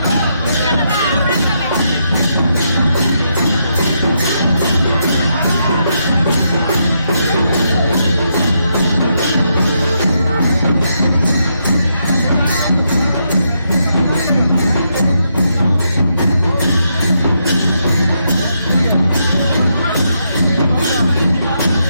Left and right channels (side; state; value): both; inverted; correlation -0.80